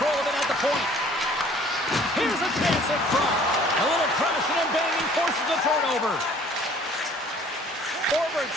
of it at the point. Here's a chance in front. A little crashing and banging forces the turnover. Forwards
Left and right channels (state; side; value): normal; both; correlation 0.54